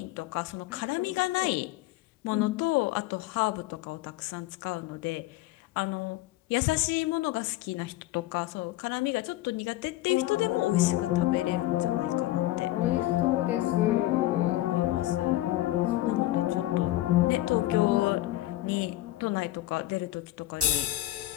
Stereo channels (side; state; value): right; quieter; 16.2 dB